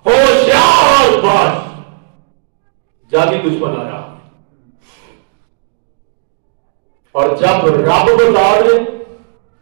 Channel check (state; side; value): silent; left; digital silence